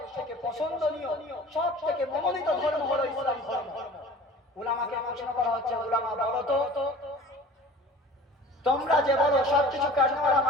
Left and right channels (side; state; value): both; normal; correlation 0.43